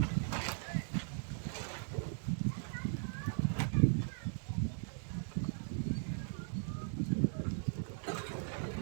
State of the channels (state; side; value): silent; left; digital silence